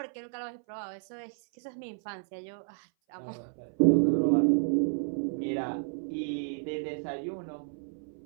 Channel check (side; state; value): left; silent; 57 dB below the other